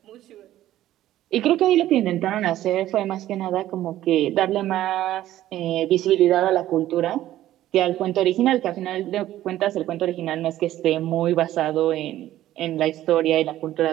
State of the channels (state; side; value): quieter; left; 13.7 dB